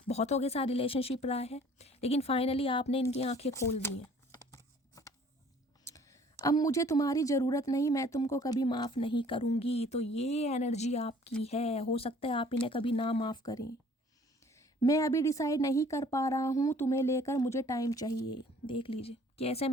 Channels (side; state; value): both; normal; correlation 0.54